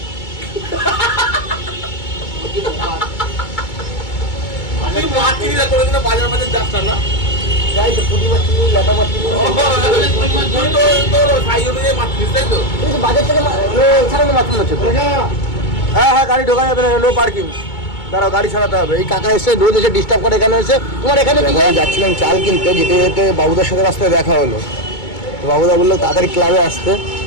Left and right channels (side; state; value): right; late; 2.2 ms